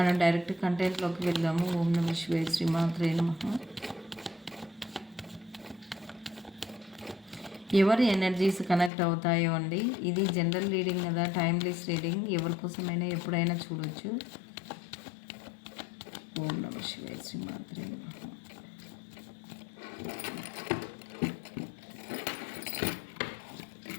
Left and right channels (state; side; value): drops out; right; at 8.9 s